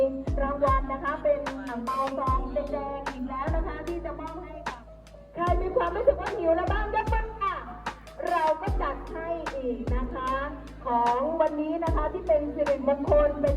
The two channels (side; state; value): both; identical; correlation 1.00